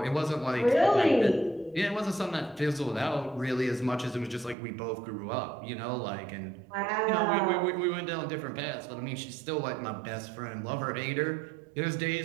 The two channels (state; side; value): drops out; left; at 4.5 s